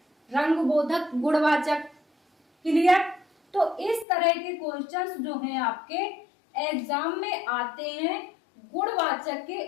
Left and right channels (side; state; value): right; drops out; at 4.0 s